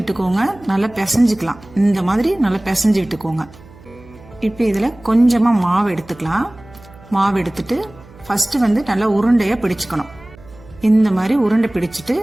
நல்லா பிசைஞ்சுக்கலாம். இந்த மாதிரி நல்லா பிசைஞ்சு விட்டுக்கோங்க. இப்ப இதுல கொஞ்சமா மாவு எடுத்துக்கலாம். மாவு எடுத்துட்டு ஃபர்ஸ்ட் நல்லா உருண்டையா பிடிச்சுக்கணும். இந்த மாதிரி உருண்டை பிடிச்சிட்டு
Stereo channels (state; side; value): noise; right; hum, 23 dB below the sound